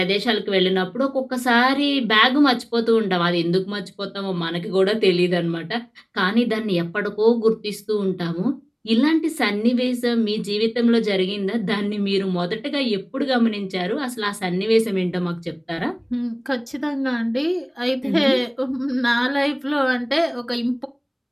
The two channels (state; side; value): identical; both; correlation 1.00